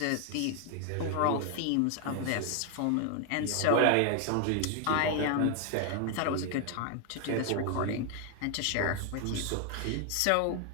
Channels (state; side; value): different; both; correlation 0.00